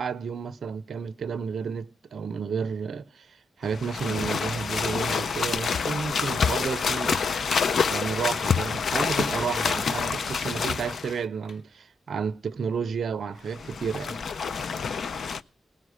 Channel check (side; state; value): both; normal; correlation 0.77